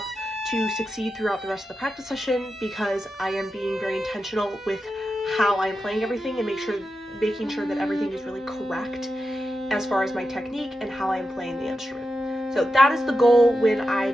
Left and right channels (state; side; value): normal; both; correlation 0.90